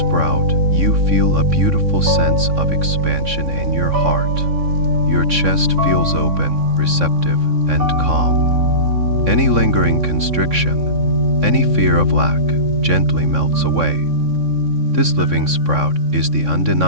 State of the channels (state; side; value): late; left; 3.6 ms